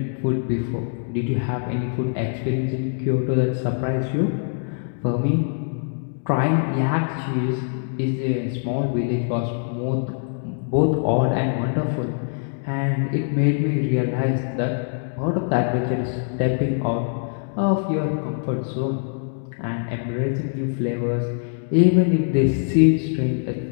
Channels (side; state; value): right; silent; digital silence